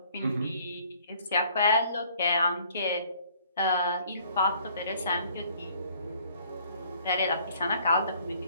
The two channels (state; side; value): inverted; both; correlation -0.58